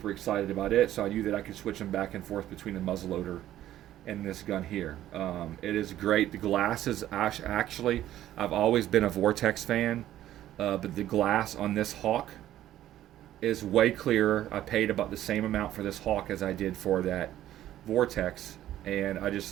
excited about it. So I knew that I could switch them back and forth between the muzzleloader and this gun here. It is great. The glass is actually, I've always been a Vortex fan, but the glass on this Hawk is way clearer. I paid about the same amount for this Hawk as I did for that Vortex, and I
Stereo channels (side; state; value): left; quieter; 12.9 dB